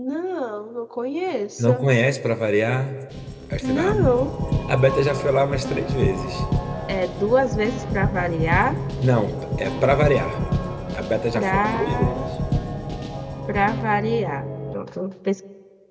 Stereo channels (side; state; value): both; identical; correlation 1.00